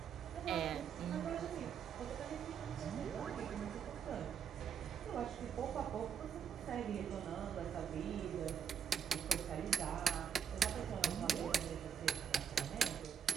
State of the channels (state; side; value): quieter; left; 7.6 dB